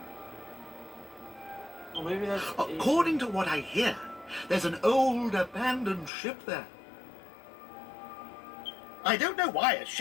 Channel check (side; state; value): right; drops out; at 6.1 s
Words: Or maybe that's... According to what I hear, there's an old abandoned ship there. I don't know why a